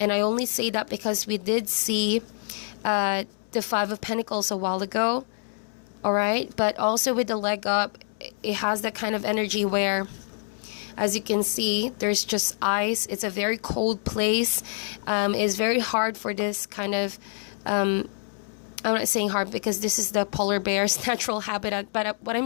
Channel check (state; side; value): silent; right; 60 dB below the other